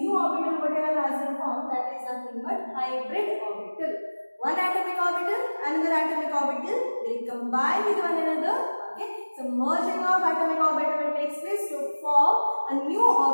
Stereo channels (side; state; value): both; inverted; correlation -1.00